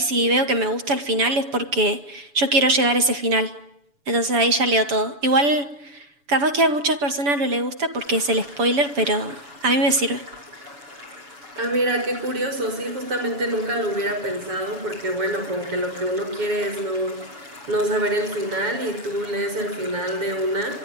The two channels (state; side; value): late; left; 7.0 ms